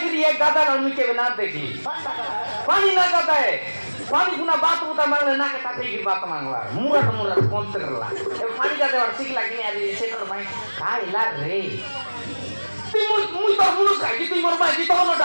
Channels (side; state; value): both; inverted; correlation -1.00